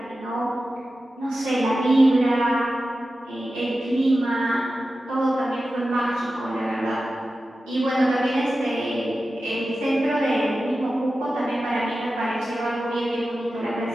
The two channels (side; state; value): both; normal; correlation 0.93